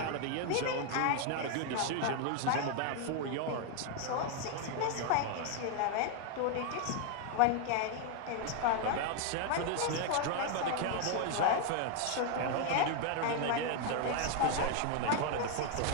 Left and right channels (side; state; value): both; different; correlation 0.00